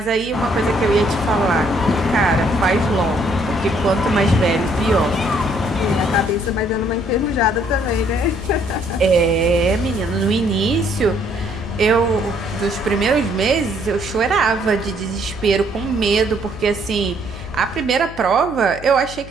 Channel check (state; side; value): noise; left; hum, 15 dB below the sound